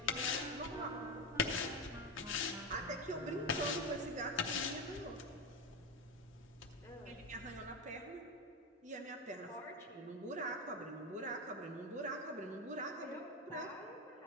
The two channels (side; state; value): both; normal; correlation 0.14